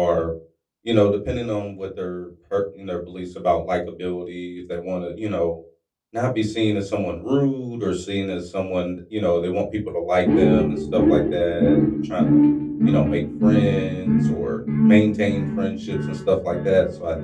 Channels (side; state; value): both; identical; correlation 1.00